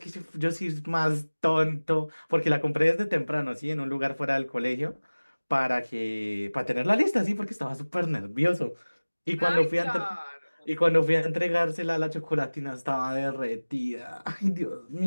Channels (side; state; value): both; inverted; correlation -1.00